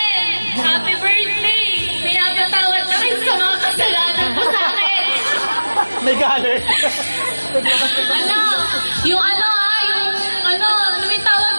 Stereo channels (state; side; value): inverted; both; correlation -1.00